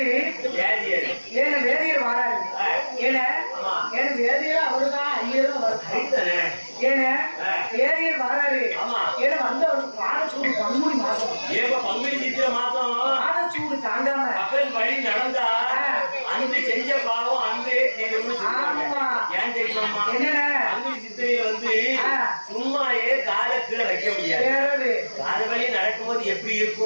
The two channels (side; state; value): both; inverted; correlation -1.00